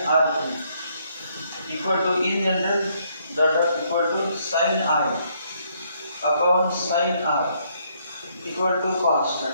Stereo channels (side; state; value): both; inverted; correlation -0.71